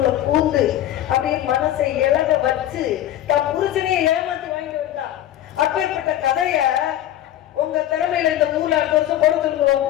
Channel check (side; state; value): right; quieter; 12.5 dB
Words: பூந்து அப்படியே மனசை இழக வச்சு தன் புருஷனையே ஏமாத்தி வாங்கிட்டு வந்தா. அப்பேற்பட்ட கதைய உங்க திறமையில இந்த ஊர்ல அடுத்த வருஷம் போட